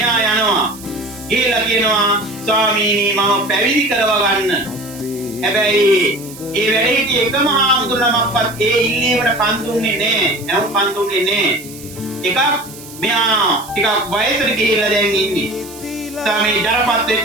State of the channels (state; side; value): noise; right; hiss, 17 dB below the sound